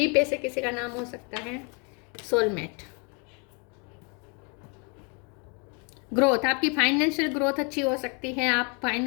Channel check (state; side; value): quieter; right; 34.5 dB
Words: पे से किसी का नाम हो सकता है। सोलमेट, ग्रोथ, आपकी फाइनेंशियल ग्रोथ अच्छी हो सकती है, आप